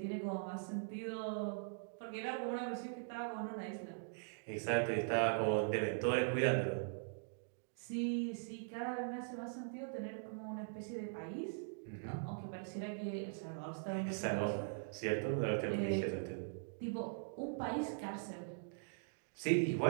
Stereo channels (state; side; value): silent; left; digital silence